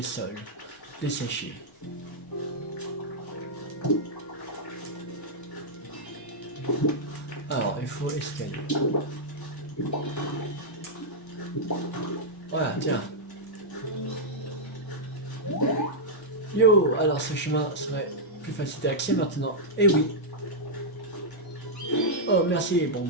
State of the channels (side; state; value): both; normal; correlation -0.07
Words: sols desséchés. Alors, il faut escalier. Voilà, tiens. Yo, alors ce chemin serait plus facile d'accès maintenant. Eh oui. Oh, merci. Bon,